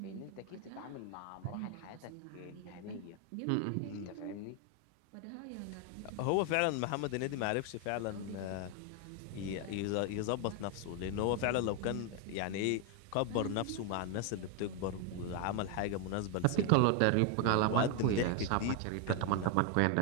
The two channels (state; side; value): different; both; correlation 0.01